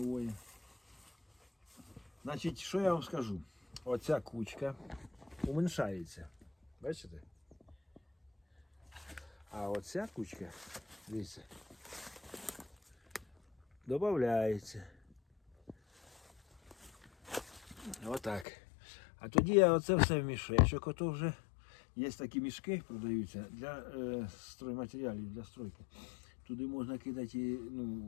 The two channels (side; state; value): right; drops out; at 18.4 s